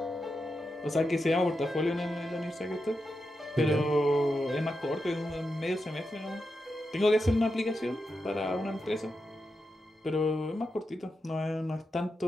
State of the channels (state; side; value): normal; both; correlation 0.88